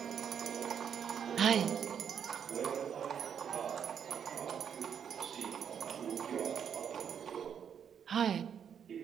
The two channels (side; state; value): left; quieter; 8.0 dB